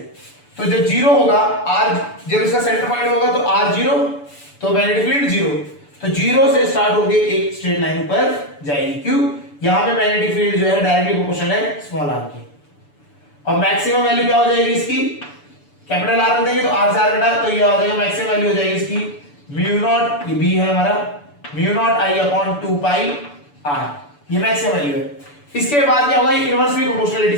तो जब 0 होगा r, जब इसका सेंटर पॉइंट होगा तो r 0, तो मैग्नेटिक फील्ड 0, तो 0 से स्टार्ट होके एक स्ट्रेट लाइन पर जाएगी। क्यों? यहां पे मैग्नेटिक फील्ड जो है डायरेक्टली प्रोपोर्शनल है स्मॉल r की, और मैक्सिमम वैल्यू क्या हो जाएगी इसकी, कैपिटल R देंगे तो r से r घटा, तो ये आ जाएगा मैक्सिमम वैल्यू हो जाएगी इसकी म्यू नॉट, ये b है हमारा mu not i upon 2 pi r, ये मैक्सिमम वैल्यू है। इसके बाद क्या होगा, ये इनवर्सली प्रोपोर्शनलिटी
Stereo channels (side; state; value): right; late; 6.9 ms